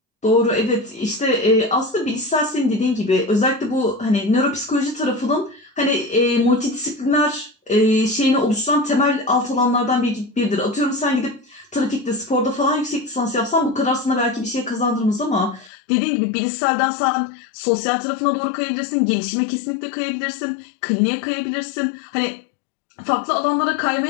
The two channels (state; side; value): drops out; right; at 15.7 s